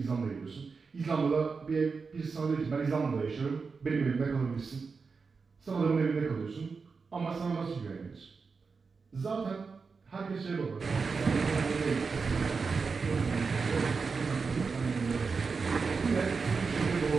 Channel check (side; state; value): left; quieter; 4.9 dB